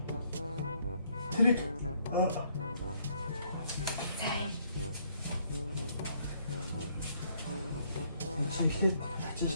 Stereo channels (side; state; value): both; inverted; correlation -0.68